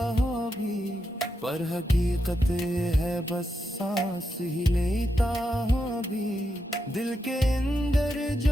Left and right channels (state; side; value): normal; both; correlation 0.85